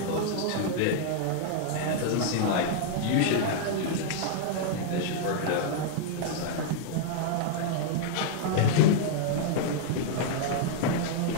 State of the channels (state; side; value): different; both; correlation -0.01